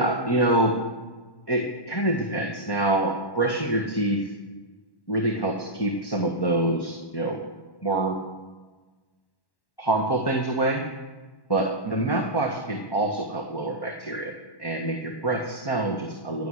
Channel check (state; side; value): late; right; 1.1 ms